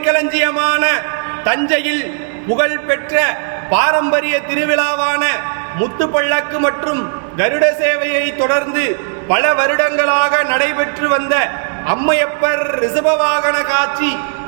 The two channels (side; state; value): left; silent; digital silence